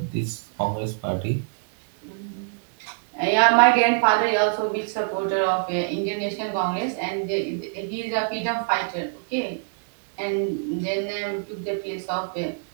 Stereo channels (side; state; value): left; silent; digital silence